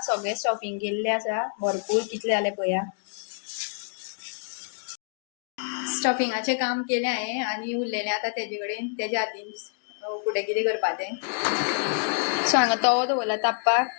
सगळें स्टफिंग केल्लें आसा. भरपूर कितले जाले पळोवया. स्टफिंगाचें काम केलें हांवें आनी उरलेलें आतां तेजे कडेन. तेज्या हातीन फुडें कितें करपा तें. सो हांगा तवो दवरला तापपाक.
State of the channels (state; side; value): silent; right; 60 dB below the other